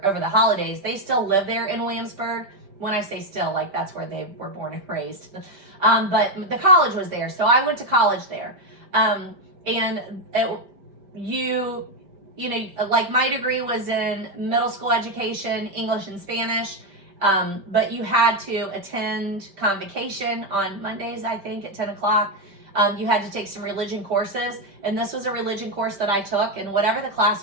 the holidays. They still live there in Williamsburg. When I say still, like that's where they were born and raised. But the college was there, so I went to college there. You know, like my degree was in middle school education, English and Spanish. But you had to attend convocation on Mondays, I think, at 10 o'clock. You had to take some religion courses, and this was a religion course that I took, and whatever the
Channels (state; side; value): late; left; 5.1 ms